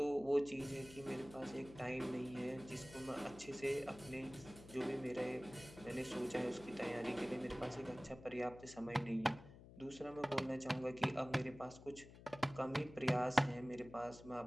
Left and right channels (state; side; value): noise; left; hum, 17 dB below the sound